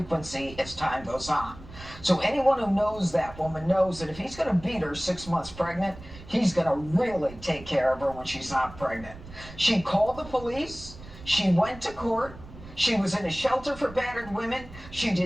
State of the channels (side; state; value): right; noise; rumble, 17 dB below the sound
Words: as time goes on. So anyone who knows that woman knows that if he's going to beat her 6 months pregnant, he's going to really take care of her when she's not pregnant. She called the police. She went to court. She was in a shelter for battered women. She